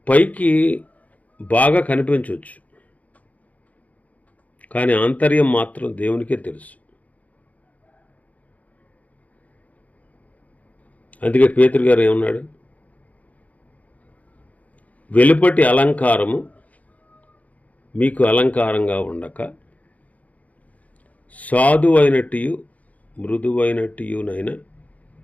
పైకి బాగా కనిపించవచ్చు, కానీ ఆంతర్యం మాత్రం దేవునికే తెలుసు. అందుకే పేతురు గారు ఏమన్నాడు, వెలుపటి అలంకారము మీకు అలంకారంగా ఉండక సాధువైనట్టు మృదువైనట్టునైన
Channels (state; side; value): late; right; 0.072 ms